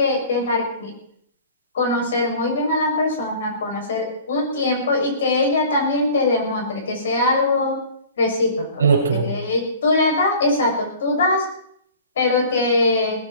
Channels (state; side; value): inverted; both; correlation -0.45